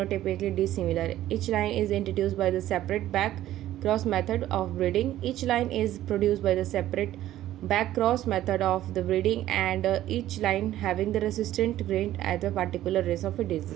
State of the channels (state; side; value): quieter; left; 13.5 dB